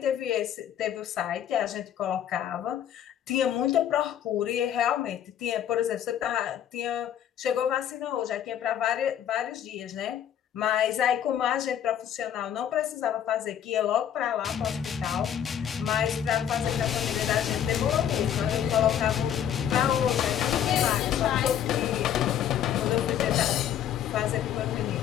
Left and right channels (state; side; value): quieter; right; 9.8 dB